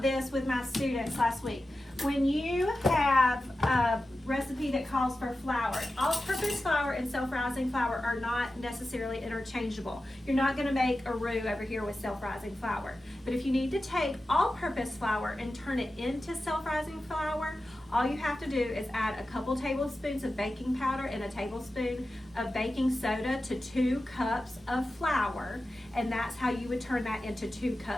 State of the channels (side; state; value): both; normal; correlation 0.93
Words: with my students last week. When you have a recipe that calls for flour, all-purpose flour and self-rising flour are not necessarily interchangeable. You're not gonna make a roux over here with self-rising flour. But if you need to take all-purpose flour and turn it into self-rising flour, all you have to do is add a couple tablespoons of baking powder and a tablespoon of baking soda to 2 cups of flour, and that's how you would turn that into 2